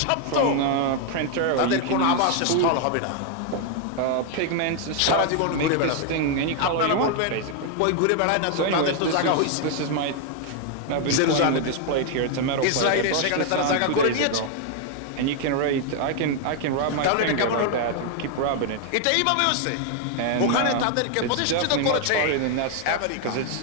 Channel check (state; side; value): different; both; correlation 0.00